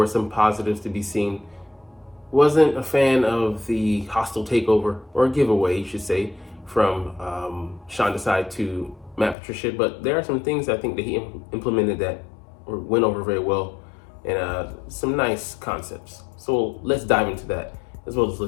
some positives to be seen. Wasn't a fan of the hostile takeover, or giveaway, you should say, from Sean Desai to Matt Patricia, but there are some things I think that he implemented that went over very well, and some nice concepts. So let's dive into that, as well as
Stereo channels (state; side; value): drops out; right; at 9.3 s